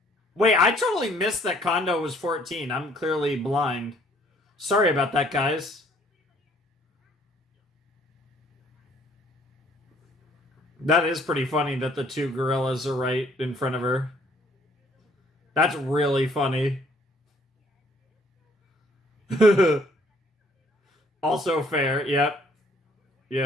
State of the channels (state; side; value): normal; both; correlation 0.61